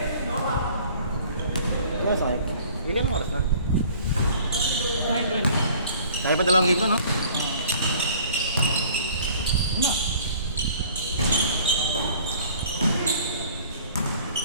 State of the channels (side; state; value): both; inverted; correlation -0.52